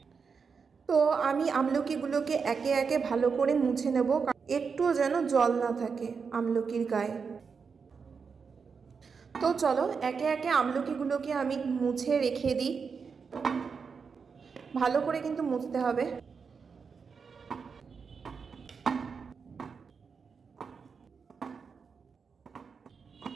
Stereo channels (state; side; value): quieter; left; 5.6 dB